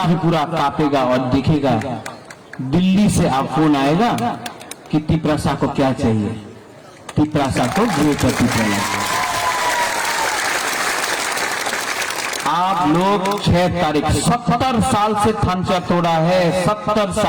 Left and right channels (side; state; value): both; identical; correlation 1.00